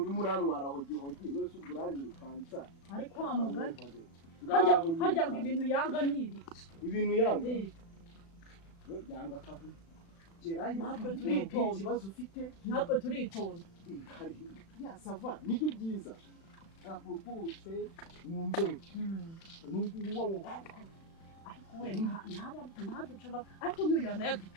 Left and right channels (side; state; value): right; late; 36 ms